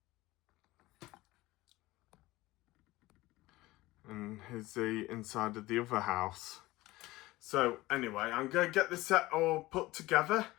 And here's the inside of the other house. So anyway, I'm going to get this set all put together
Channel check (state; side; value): quieter; right; 19.0 dB